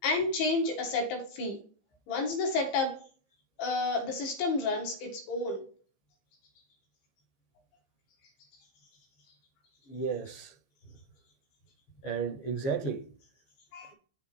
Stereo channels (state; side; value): late; right; 15 ms